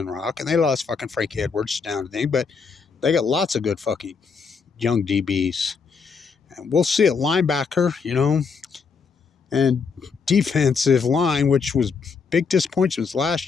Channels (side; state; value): right; quieter; 5.4 dB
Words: Rock and they lost fucking Frankie Edwards down to thing, but they got lots of good fucking young DBs. And we'll see at linebacker, and defensive line, which was big disappointments